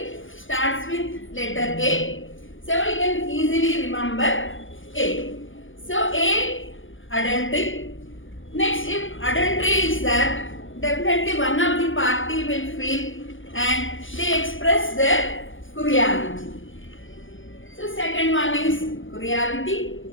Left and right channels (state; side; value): late; right; 0.57 ms